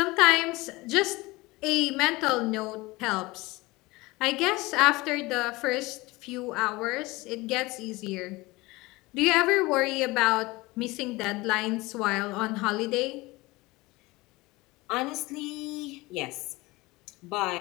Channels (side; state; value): right; quieter; 21.8 dB